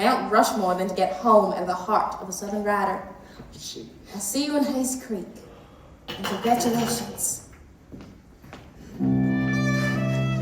Rushmore than to get home at the heart of a Southern writer. I'll see you in Hayes Creek. And congratulations.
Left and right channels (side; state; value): both; identical; correlation 1.00